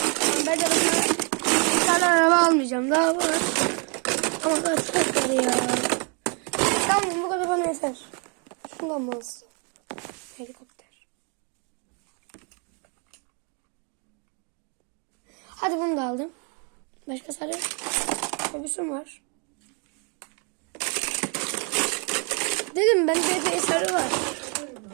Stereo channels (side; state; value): left; quieter; 36.4 dB